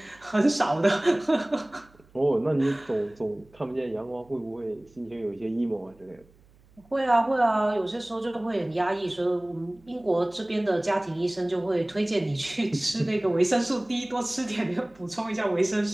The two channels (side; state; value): right; noise; hum, 29 dB below the sound